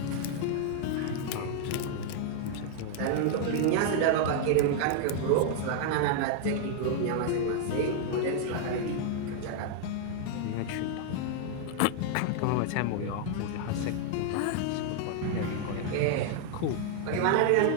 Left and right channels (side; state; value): both; different; correlation 0.00